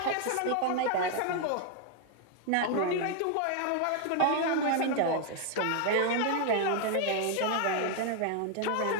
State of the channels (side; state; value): both; different; correlation 0.00